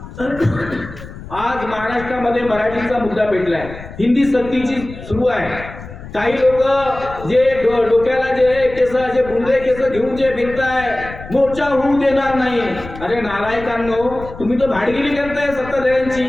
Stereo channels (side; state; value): left; noise; rumble, 14 dB below the sound